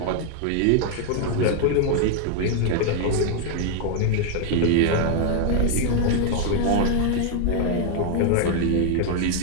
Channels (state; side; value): different; both; correlation 0.00